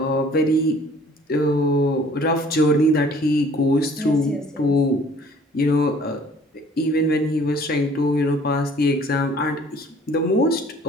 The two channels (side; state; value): both; normal; correlation 0.54